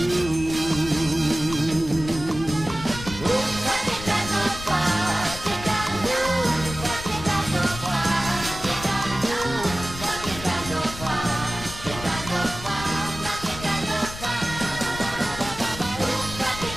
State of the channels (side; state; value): left; noise; rumble, 11 dB below the sound